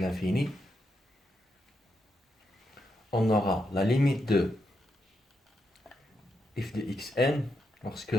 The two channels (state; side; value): normal; both; correlation 0.83